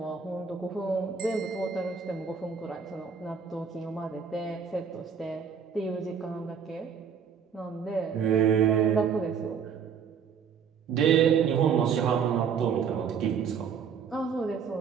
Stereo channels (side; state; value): left; quieter; 6.8 dB